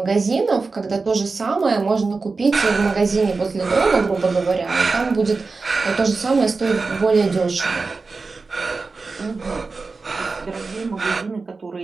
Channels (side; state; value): left; quieter; 4.1 dB